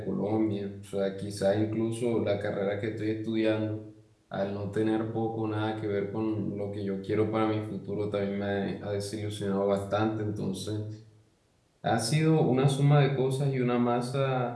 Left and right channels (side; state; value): both; identical; correlation 1.00